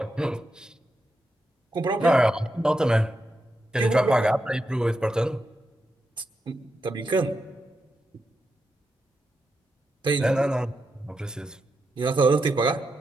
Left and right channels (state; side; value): normal; both; correlation 0.86